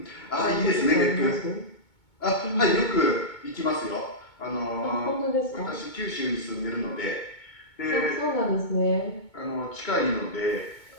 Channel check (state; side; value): late; right; 2.2 ms